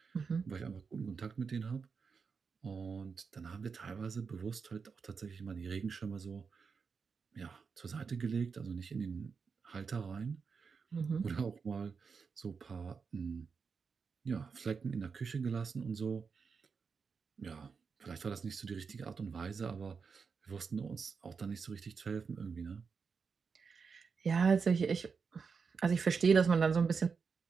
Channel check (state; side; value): quieter; left; 5.5 dB